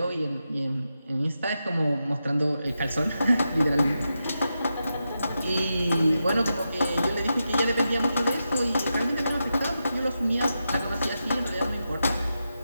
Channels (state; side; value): inverted; both; correlation -0.88